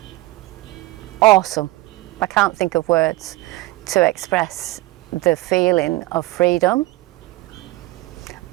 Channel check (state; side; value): quieter; left; 18.9 dB